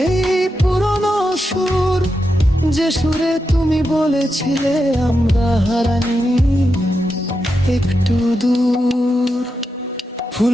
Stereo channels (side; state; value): both; normal; correlation 0.87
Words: পুরনো সুর, যে সুরে তুমি বলেছিলে আমরা হারানি একটু দূর।